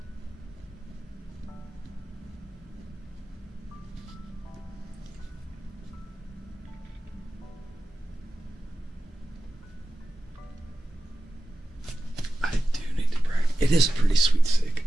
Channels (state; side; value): normal; both; correlation 0.94